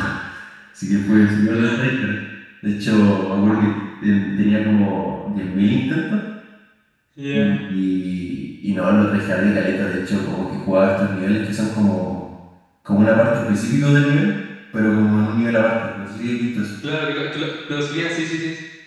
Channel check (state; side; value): identical; both; correlation 1.00